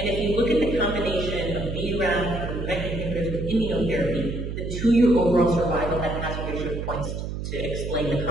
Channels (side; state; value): right; noise; hum, 5 dB below the sound